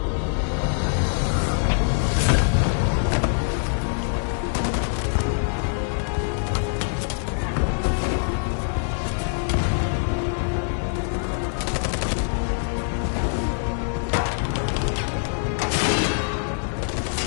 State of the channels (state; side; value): silent; right; digital silence